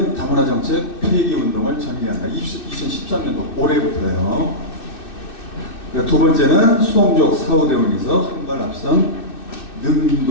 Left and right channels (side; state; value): right; late; 2.6 ms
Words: 다문화 정책 폐기 운동을 전개한다. 2013년도 올해부터요. 두 번째는 수동적 사후 대응에서 한 발 앞선